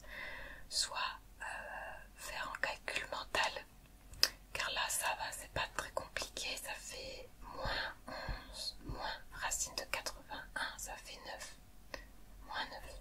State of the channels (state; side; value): identical; both; correlation 1.00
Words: soit faire un calcul mental, car là ça va, c'est pas très compliqué. Ça fait moins 11 moins racine de 81, ça fait 9, moins 9